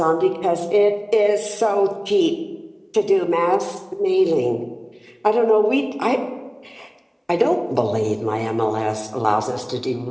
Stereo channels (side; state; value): both; identical; correlation 1.00